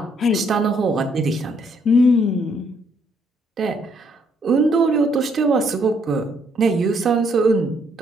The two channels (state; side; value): normal; both; correlation 0.70